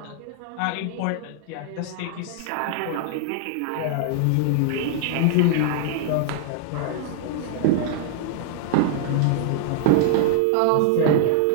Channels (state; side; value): different; both; correlation 0.00